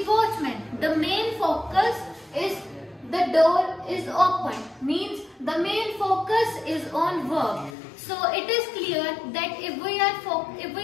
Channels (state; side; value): drops out; right; at 7.8 s